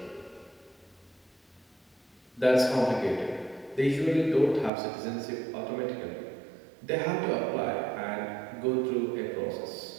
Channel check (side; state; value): left; drops out; at 4.7 s